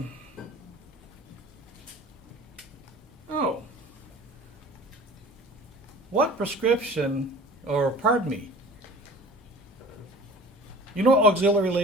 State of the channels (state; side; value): normal; both; correlation 0.43